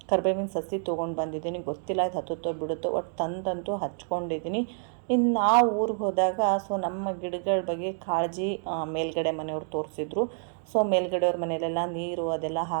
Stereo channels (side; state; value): left; silent; 59 dB below the other